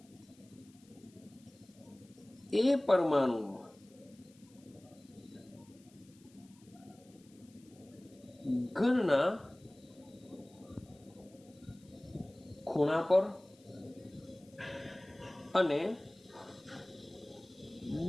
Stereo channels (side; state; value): left; noise; hiss, 28 dB below the sound